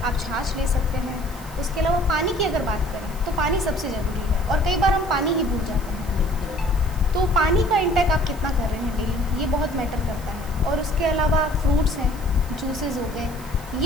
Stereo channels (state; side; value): noise; right; hiss, 19 dB below the sound